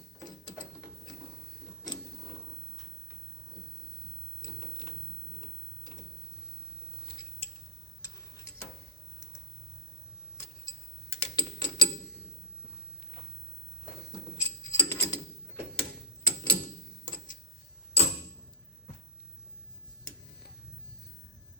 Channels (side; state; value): both; normal; correlation -0.02